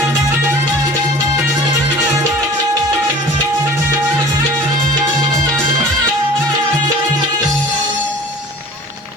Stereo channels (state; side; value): normal; both; correlation 0.44